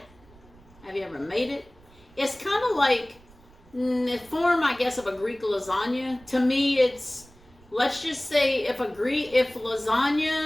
Have you ever made it? It's kind of like the form, I guess, of a Greek lasagna. To me, it's, let's just say, if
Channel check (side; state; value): right; noise; rumble, 26 dB below the sound